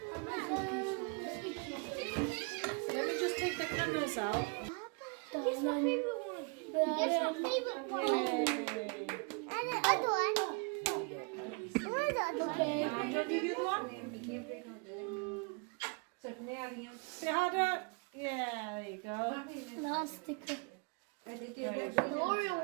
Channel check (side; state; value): left; quieter; 33.7 dB